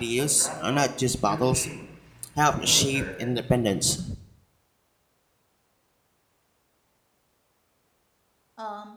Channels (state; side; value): identical; both; correlation 1.00